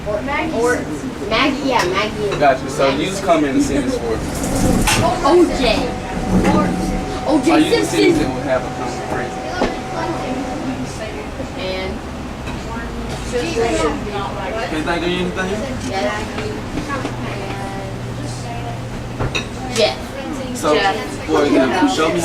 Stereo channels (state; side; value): identical; both; correlation 1.00